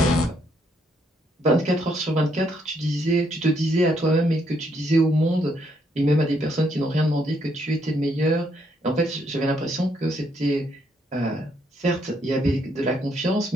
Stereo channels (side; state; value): both; normal; correlation 0.73